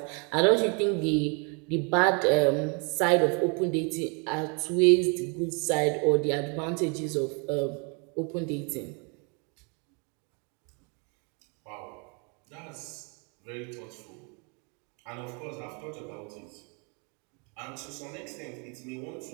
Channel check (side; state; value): left; quieter; 34.9 dB